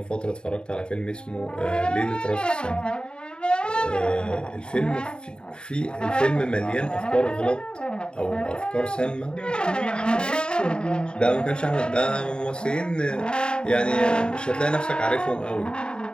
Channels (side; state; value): right; late; 0.049 ms